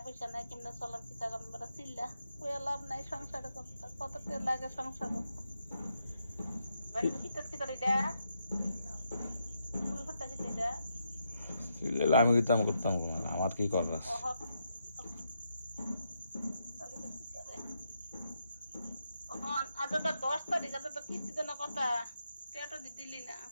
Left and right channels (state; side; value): inverted; both; correlation -0.81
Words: পয়সা নাই, কেমনে চলার কিতা করবো, বেটা চিল্লা কইয়া লাভ নাই, সংসারে কত টিয়া লাগে সংসারে। শীতের কি করে এটা ফুটটা কি এটা আমি কিতাম করতাম আমার কি করার? আজ 10 তারিখ, আজ তো কিস্তি তো না কথা, টিয়াটা দিলি না।